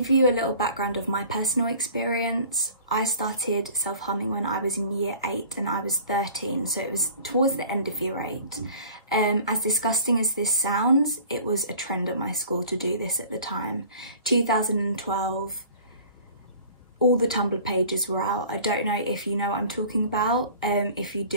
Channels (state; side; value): inverted; both; correlation -0.46